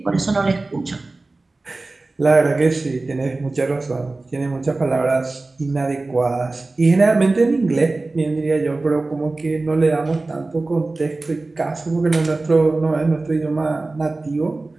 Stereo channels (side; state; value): left; quieter; 3.3 dB